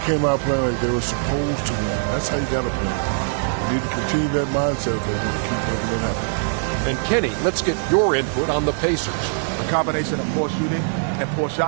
came out playing like they were supposed to win. That's how you got to play. You need to continue that mindset if they need to keep making it happen. And Kenny, let's get your input on the Pacers. A combination of poor shooting and poor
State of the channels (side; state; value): left; silent; digital silence